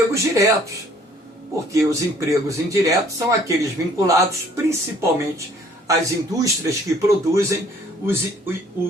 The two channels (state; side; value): normal; both; correlation 0.58